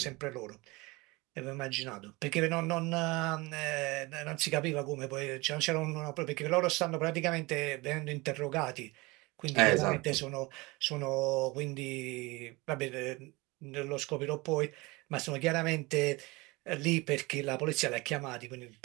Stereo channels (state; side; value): quieter; left; 23.6 dB